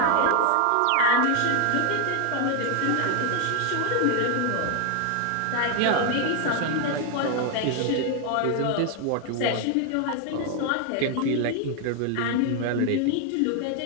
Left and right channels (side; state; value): both; different; correlation 0.01